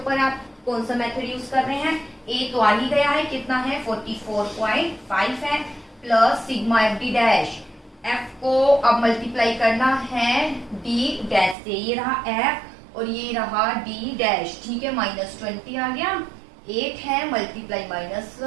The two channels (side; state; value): left; drops out; at 11.6 s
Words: आप कौन सा मेथड यूज कर रहे हैं, ए तो आ ही गया है, कितना है 44.5 है, plus sigma F D dash, F को अब मल्टीप्लाई करना है डी डैश से, ये रहा एफ और ये रहा डी डैश, ठीक है, -20 आ गया, 8 है मल्टीप्लाई